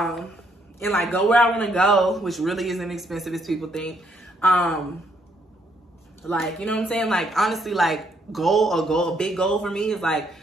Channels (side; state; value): both; normal; correlation 0.72